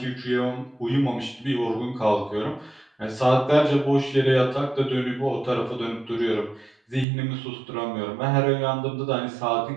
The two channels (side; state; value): left; drops out; at 7.1 s